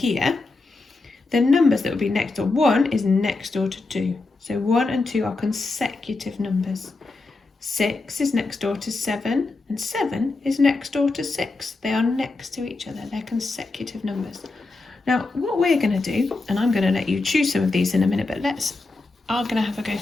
the numbers that would be next door, 1 is next door to 2. So 1 and 2 are consecutive numbers. 6 is next door to 7, and 7 is next door to 6. They are next to each other. They're consecutive numbers. Now, what we're going to do, and I'm going to let you choose some of these in a minute, but I'm going to have a go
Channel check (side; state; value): right; quieter; 3.5 dB